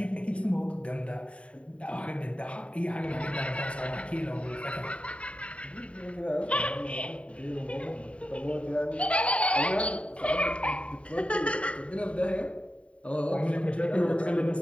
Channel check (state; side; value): late; right; 0.063 ms